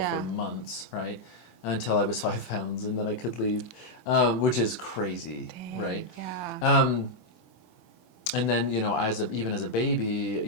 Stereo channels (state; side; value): late; right; 24 ms